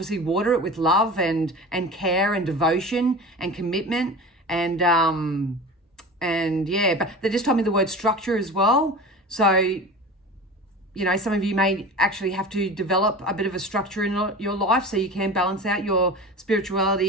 water it with love and care and devotion and commitment and yeah, but they just told me the word structure as well. So, you know, some of you may actually have to develop a bit of a structure in your life so you can balance out your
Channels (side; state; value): both; normal; correlation 0.34